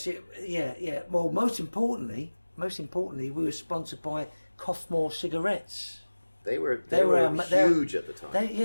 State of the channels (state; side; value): inverted; both; correlation -1.00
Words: yeah. Well, most importantly, we were sponsored by Coffmore cigarettes. They were our- huge at the time.